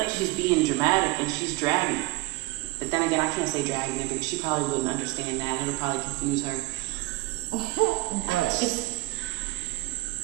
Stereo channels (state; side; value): quieter; left; 21.0 dB